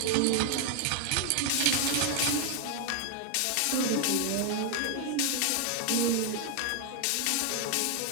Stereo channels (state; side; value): different; both; correlation 0.00